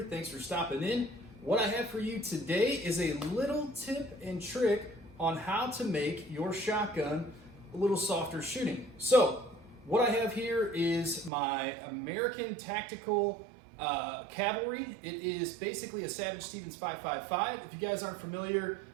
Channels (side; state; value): left; drops out; at 11.3 s